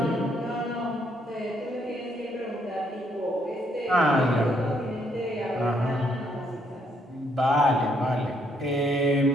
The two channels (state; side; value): normal; both; correlation 0.71